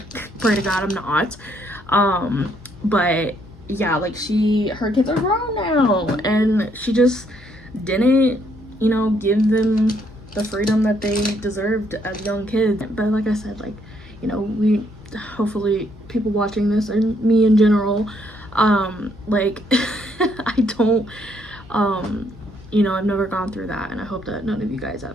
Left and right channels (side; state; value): both; normal; correlation 0.71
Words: Pray to God I'm not. But yeah, like, her kids are grown now, and she just didn't, you know, give them the freedom that they deserved as young kids. But like I said, like, you know, we hopefully people watching this, and me in general, like I don't, you know, I've never gone through that, and I hope that none of you guys